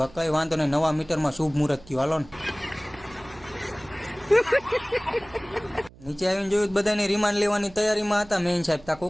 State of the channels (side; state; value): right; noise; hum, 23 dB below the sound